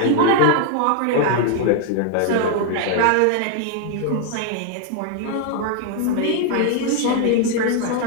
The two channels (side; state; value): both; different; correlation 0.00